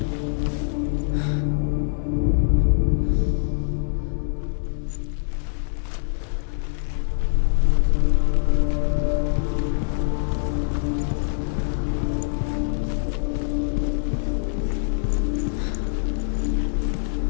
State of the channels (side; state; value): right; silent; 59 dB below the other